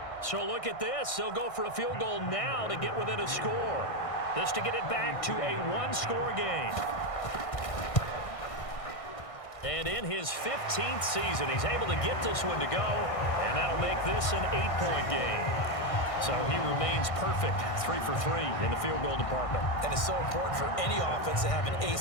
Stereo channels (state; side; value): late; right; 1.6 ms